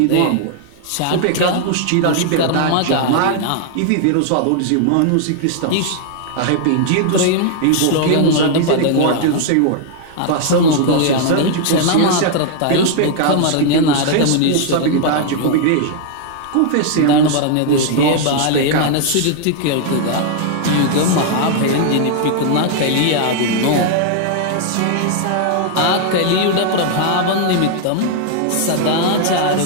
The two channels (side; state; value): both; different; correlation 0.00